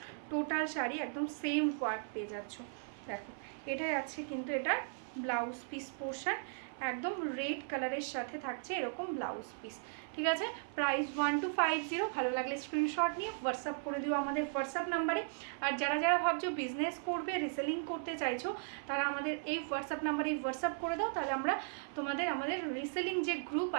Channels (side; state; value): left; silent; 53 dB below the other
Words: টোটাল শাড়ি একদম সেম ওয়ার্ক পেয়ে যাচ্ছ। দেখো এটাই আছে কিন্তু এটা ব্লাউজ পিস পোর্শন, একদম রেড কালারের সাথে থাকছে এরকম ব্লাউজ পিস, ঠিক আছে? প্রাইস 1250। ভালো লাগলে স্ক্রিনশট নিয়ে হোয়াটসঅ্যাপ করে দিও আমাদের হোয়াটসঅ্যাপ নাম্বারে। আর যারা যারা ভাবছো বিজনেস করবে, রিসেলিং করতে চাইছো, তারা আমাদের এই হোয়াটসঅ্যাপ নাম্বারে হোয়াটসঅ্যাপ করে দাও, তাহলে আমরা আমাদের রিসেলিং যে গ্রুপ